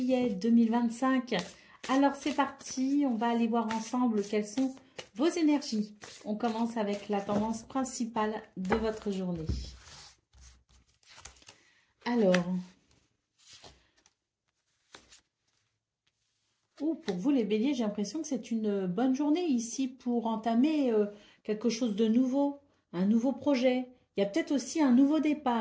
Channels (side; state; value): both; identical; correlation 1.00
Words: 2025. Alors c'est parti, on va aller voir ensemble quelles sont vos énergies. On commence avec la tendance principale de votre journée. Alors, pour vous les Béliers, j'ai l'impression que c'est une bonne journée ici pour entamer quelque chose de nouveau, un nouveau projet. Il y a peut-être aussi un nouveau